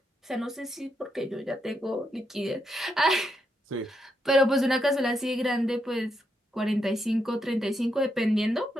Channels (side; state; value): both; normal; correlation 0.81